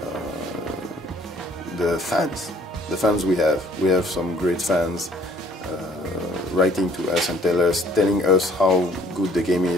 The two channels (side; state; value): both; normal; correlation 0.60